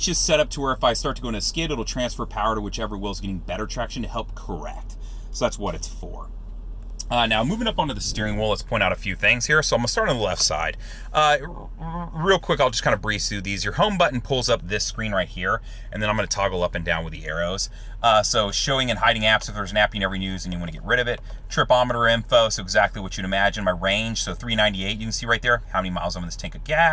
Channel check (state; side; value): identical; both; correlation 1.00